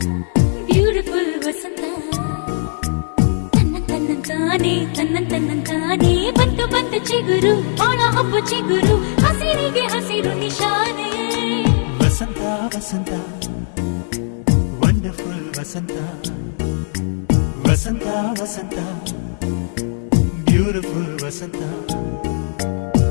beautiful ವಸಂತ ತನ್ನಂತಾನೆ ಬಂತು ಬಂತು ಚಿಗುರು ಬಾಳ ಹಬ್ಬ ಚಿಗುರು ಹಸಿರಿಗೆ ಹಸಿರು ನಿಶಾನೆ ವಸಂತ ವಸಂತ ವಂಡರ್ಫುಲ್ ವಸಂತ ವಸಂತ ವಸಂತ ಬ್ಯೂಟಿಫುಲ್ ವಸಂತ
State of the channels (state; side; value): silent; right; digital silence